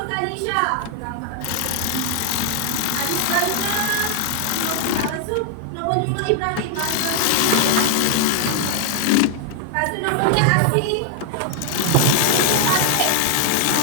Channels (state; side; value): different; both; correlation 0.00